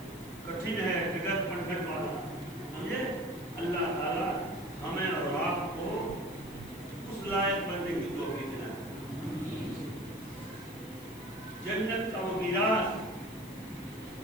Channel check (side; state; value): left; noise; hiss, 19 dB below the sound